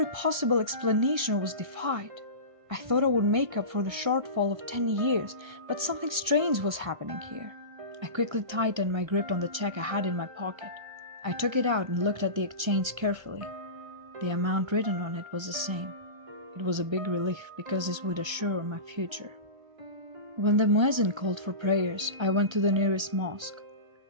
possible explanation was defied. I thought I would make up for the shortfall of 10 years, but something strange was happening here. I quickly tightened my grip on the check I had in my pocket. I took it out and looked at the exchange carefully. The amount written on it was the same. It was a big relief because this would assure my future. When the muezzin called for prayers, I went to the nearest mosque.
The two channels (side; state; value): left; late; 1.5 ms